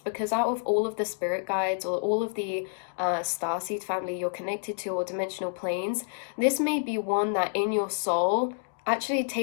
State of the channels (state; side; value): silent; right; digital silence